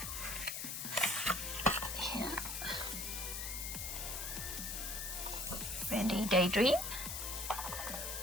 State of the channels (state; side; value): noise; left; hiss, 4 dB below the sound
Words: here, Randy Daydream,